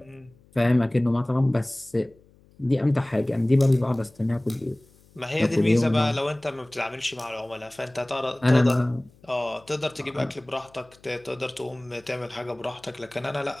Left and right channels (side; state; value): left; noise; hum, 29 dB below the sound